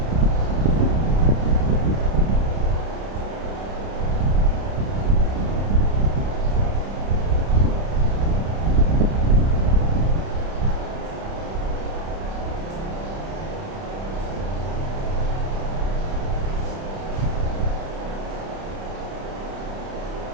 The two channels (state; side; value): late; left; 31 ms